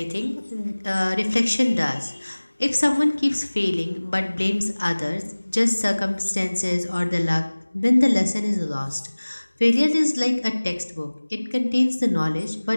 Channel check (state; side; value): inverted; both; correlation -1.00